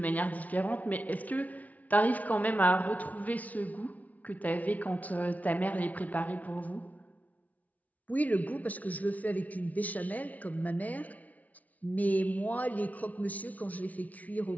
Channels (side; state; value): right; late; 0.072 ms